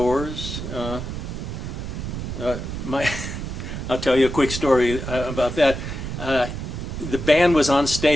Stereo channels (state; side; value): noise; right; rumble, 6 dB below the sound